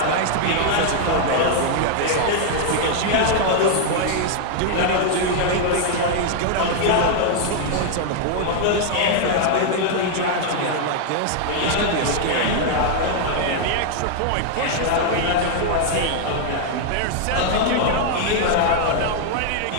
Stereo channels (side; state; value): both; different; correlation 0.00